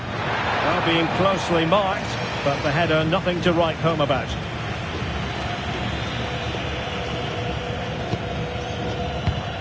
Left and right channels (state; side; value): identical; both; correlation 1.00